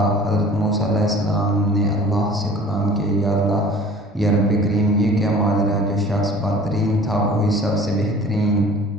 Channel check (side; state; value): both; normal; correlation 0.46